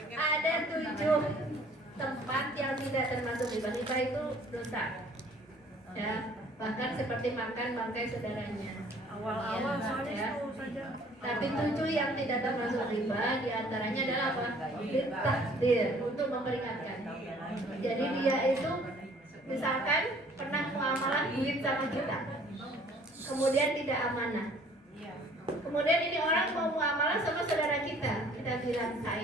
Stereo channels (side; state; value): both; normal; correlation 0.55